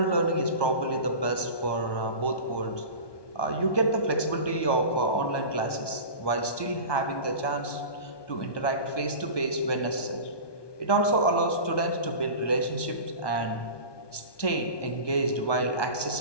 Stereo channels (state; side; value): late; right; 1.2 ms